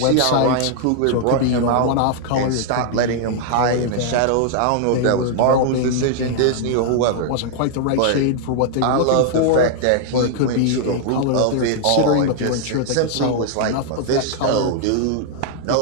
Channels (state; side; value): different; both; correlation 0.00